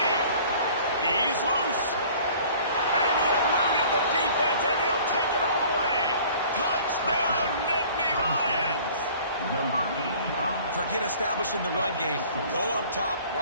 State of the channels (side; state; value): both; inverted; correlation -0.49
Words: He's loose. And he eluded the defense, and he'll take it all the way. Touchdown, Nittany Lions. Forget establishing the run game. Go up top